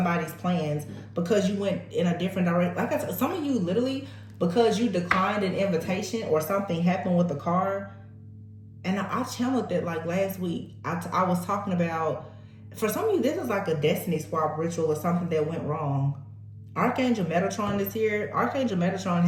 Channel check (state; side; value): identical; both; correlation 1.00